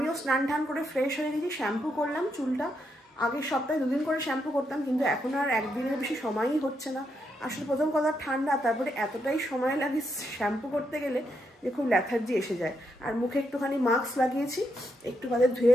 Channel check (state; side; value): normal; both; correlation 0.80